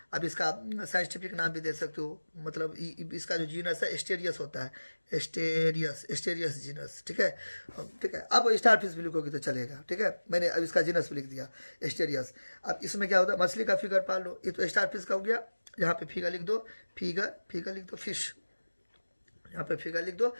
अब इसका साइंटिफिक नाम भी दे सकते हो, मतलब इसका जो जीनस है एस्टेरियस होता है, एस्टेरियस जीनस, ठीक है, ठीक है। अब स्टार फिश भी लिखोगे तो चलेगा, ठीक है। मैंने अब इसका जीनस भी लिख दिया एस्टेरियस। अब इसमें क्या होता है, मछली का फिगर पाल लो, ये तो स्टार फिश का हो गया। यहाँ पे फिगर लिख दो, फिगर लिख दो फिश, यहाँ पे फिगर लिख दो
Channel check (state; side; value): inverted; both; correlation -1.00